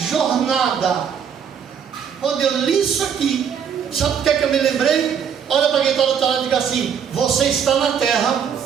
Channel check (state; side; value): quieter; left; 7.6 dB